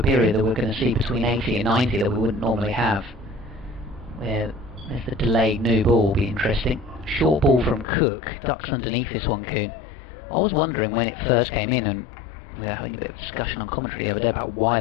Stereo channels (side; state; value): right; drops out; at 7.9 s